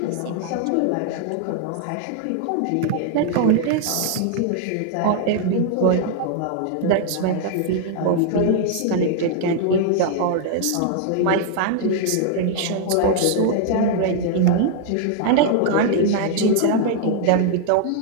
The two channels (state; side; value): different; both; correlation 0.00